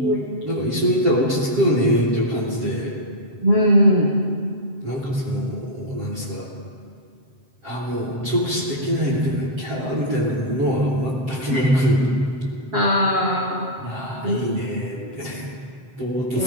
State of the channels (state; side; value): late; left; 7.7 ms